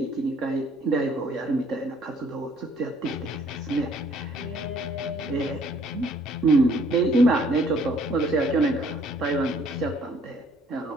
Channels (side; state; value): both; normal; correlation 0.61